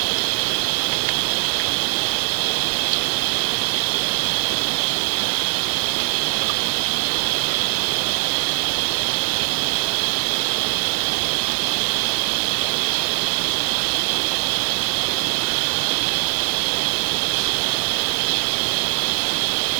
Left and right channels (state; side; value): silent; left; 65 dB below the other